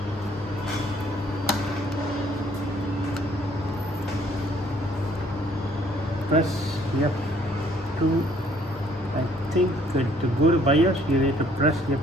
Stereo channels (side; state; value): both; normal; correlation 0.62